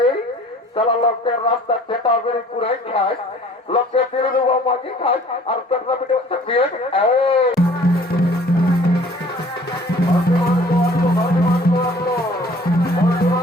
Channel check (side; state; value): both; normal; correlation 0.52